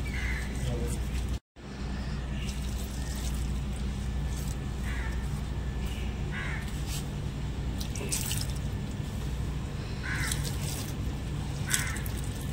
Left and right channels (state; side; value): identical; both; correlation 1.00